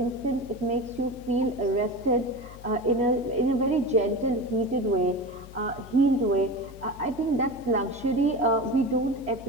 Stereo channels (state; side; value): noise; left; hum, 17 dB below the sound